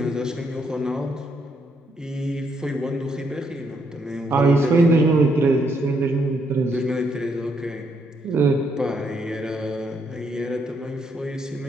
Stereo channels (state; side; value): normal; both; correlation 0.74